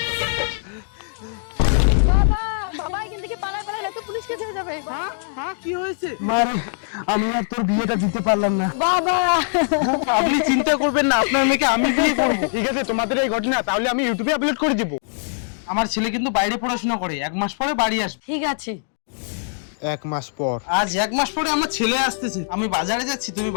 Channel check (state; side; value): silent; right; digital silence